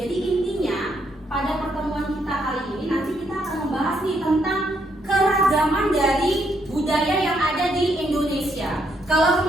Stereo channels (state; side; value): normal; both; correlation 0.75